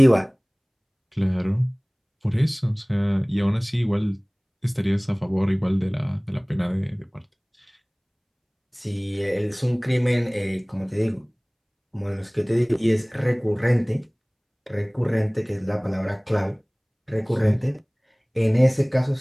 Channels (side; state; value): both; identical; correlation 1.00